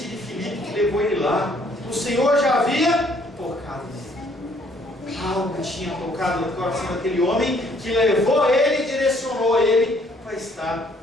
de Filipe que levou ele lá. O Senhor já havia tocado nele. Algo tinha tocado no coração daquele homem que levou ele e direcionou ele para estar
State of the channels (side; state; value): both; normal; correlation 0.64